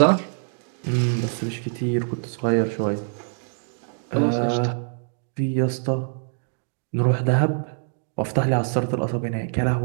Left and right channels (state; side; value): silent; left; digital silence